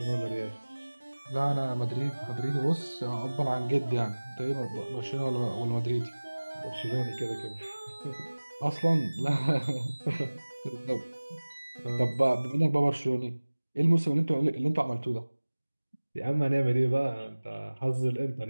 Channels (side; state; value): both; inverted; correlation -1.00